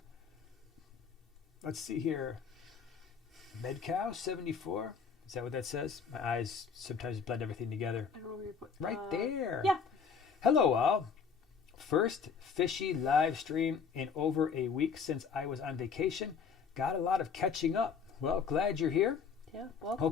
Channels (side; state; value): right; quieter; 6.0 dB